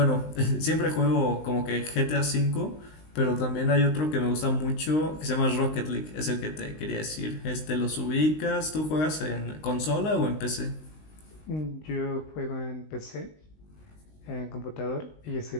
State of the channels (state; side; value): late; right; 19 ms